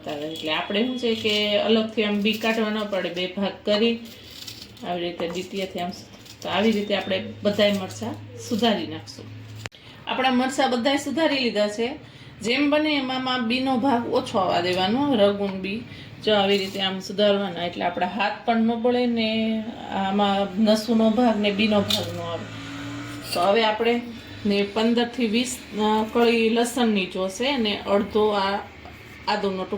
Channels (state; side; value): identical; both; correlation 1.00